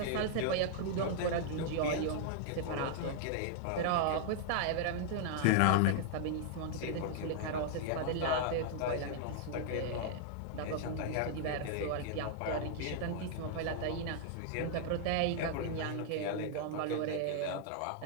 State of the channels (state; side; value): different; both; correlation -0.01